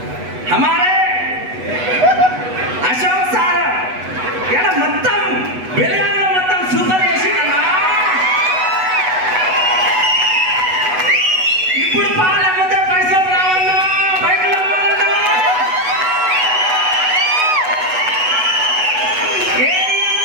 हमारे अशोक सार यार మొత్తం బెలగాంలో మొత్తం సూపర్ చేసిందన్నా। ఇప్పుడు పాల ముందే పైసలు రావన్నా, బైకులు అమ్మాలన్నా।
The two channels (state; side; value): late; left; 8.1 ms